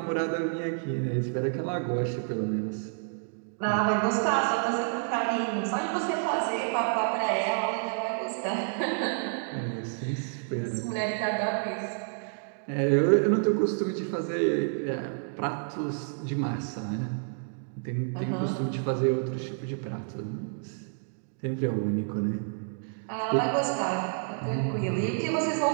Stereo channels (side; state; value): left; silent; digital silence